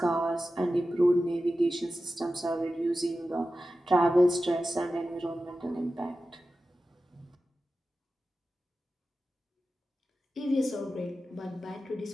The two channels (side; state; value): both; normal; correlation 0.93